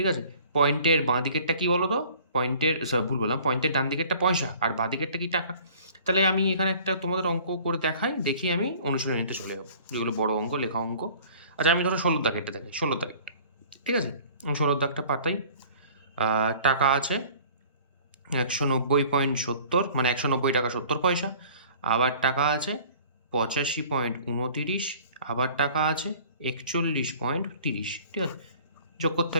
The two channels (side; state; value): both; inverted; correlation -0.49